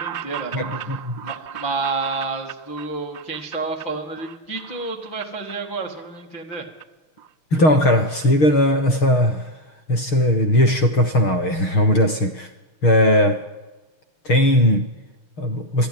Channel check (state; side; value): late; right; 6.4 ms